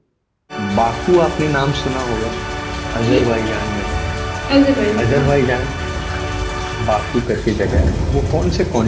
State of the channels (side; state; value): both; identical; correlation 1.00